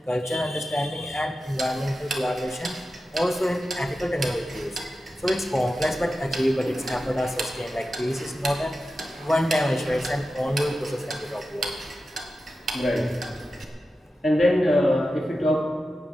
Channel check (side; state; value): both; normal; correlation 0.92